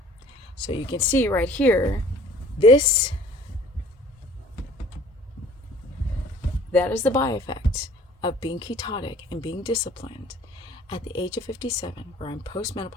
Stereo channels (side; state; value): both; normal; correlation 0.52